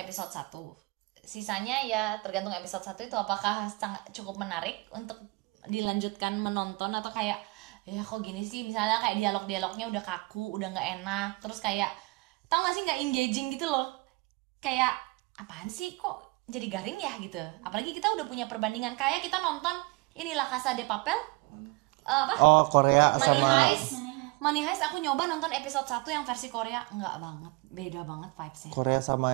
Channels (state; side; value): quieter; left; 25.4 dB